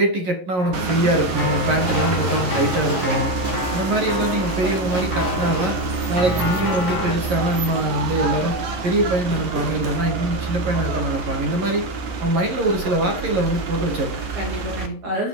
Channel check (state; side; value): late; left; 11 ms